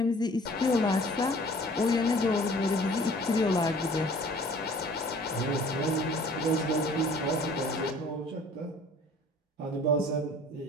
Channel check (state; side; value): normal; both; correlation 0.51